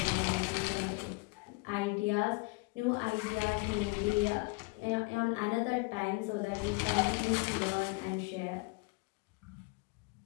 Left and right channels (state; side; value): quieter; right; 27.8 dB